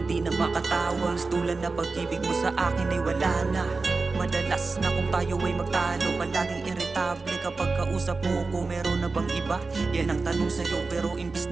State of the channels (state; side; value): quieter; left; 3.9 dB